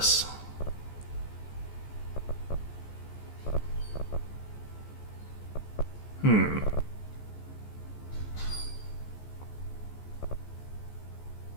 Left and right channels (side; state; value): right; late; 14 ms